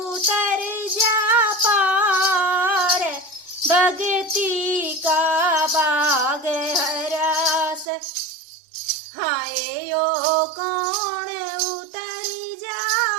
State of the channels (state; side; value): drops out; left; at 7.9 s